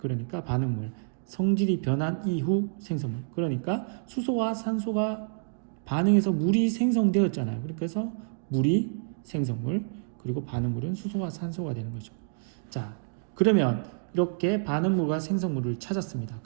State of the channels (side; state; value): left; silent; digital silence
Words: 반응물, 성질이 변한 이후 생성물, 그러니까 수소와 산소가 반응해서 물이 생성되었잖아요. 그래서 물이 생성물, 그리고 반응물은 수소와 산소가 되는 거죠. 자, 그러면 이렇게 반응물과 생성물을 찾았습니다.